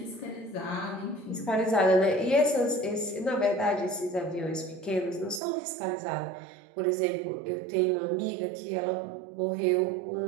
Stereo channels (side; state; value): left; drops out; at 5.4 s